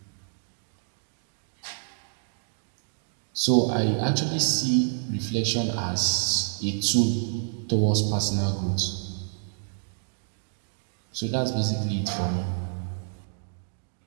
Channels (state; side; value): silent; left; digital silence